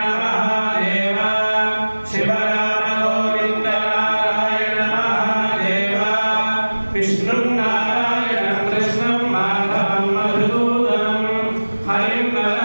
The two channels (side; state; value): both; inverted; correlation -1.00